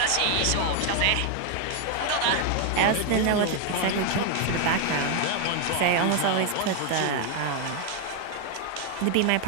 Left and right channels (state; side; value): different; both; correlation 0.00